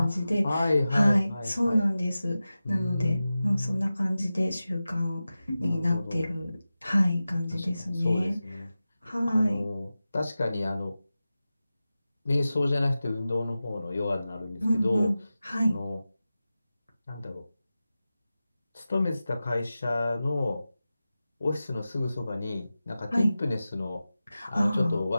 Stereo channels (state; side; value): inverted; both; correlation -0.95